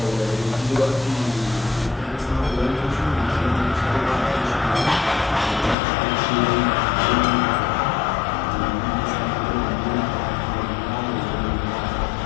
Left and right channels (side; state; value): right; drops out; at 5.8 s